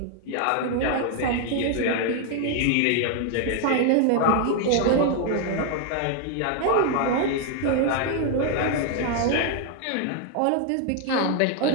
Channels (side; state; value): both; different; correlation 0.00